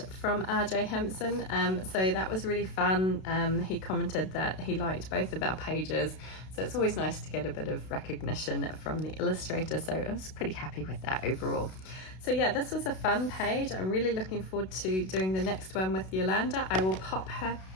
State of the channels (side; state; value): right; late; 32 ms